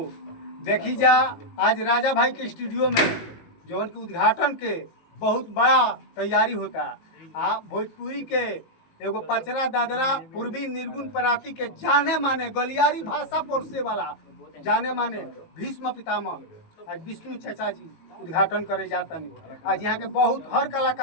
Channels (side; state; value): right; late; 19 ms